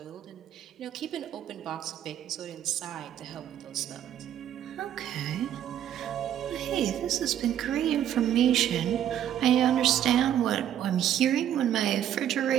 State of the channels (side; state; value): left; quieter; 10.6 dB